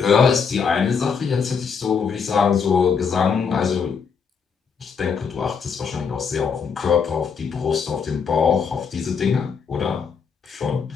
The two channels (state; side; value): quieter; right; 6.1 dB